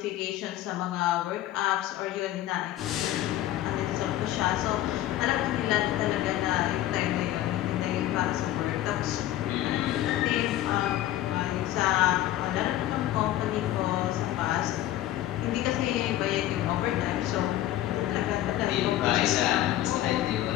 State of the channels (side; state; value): right; quieter; 13.9 dB